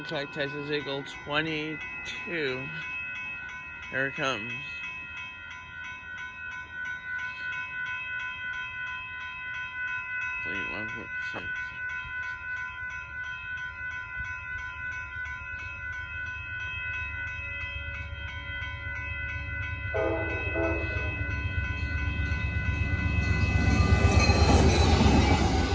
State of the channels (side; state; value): both; identical; correlation 1.00